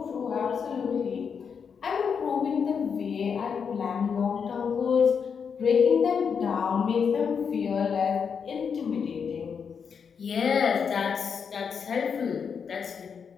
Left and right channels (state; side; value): quieter; right; 6.5 dB